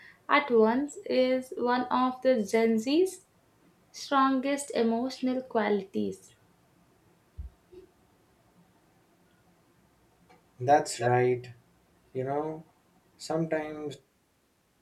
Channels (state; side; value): identical; both; correlation 1.00